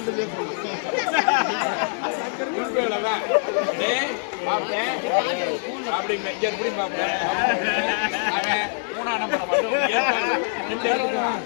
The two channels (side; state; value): right; silent; 59 dB below the other